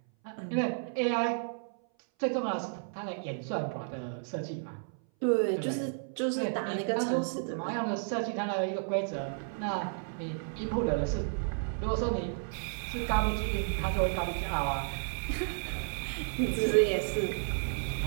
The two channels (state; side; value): silent; left; 56 dB below the other